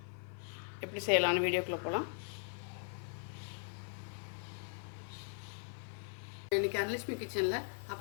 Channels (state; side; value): silent; right; 51 dB below the other